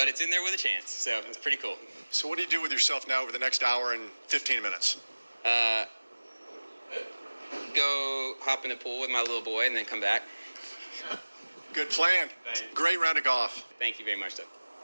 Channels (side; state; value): both; inverted; correlation -1.00